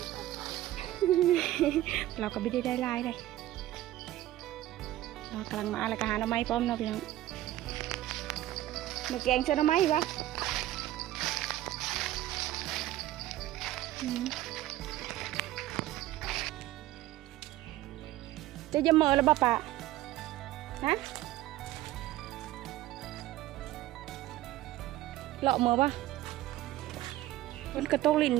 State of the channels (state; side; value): quieter; left; 15.0 dB